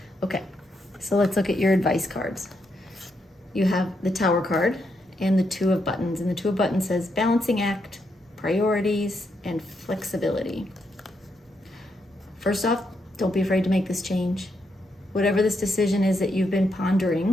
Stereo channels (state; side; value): normal; both; correlation 0.80